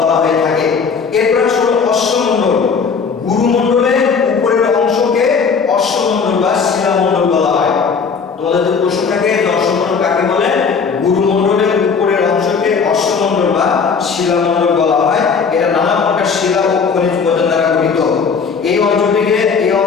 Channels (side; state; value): right; quieter; 5.7 dB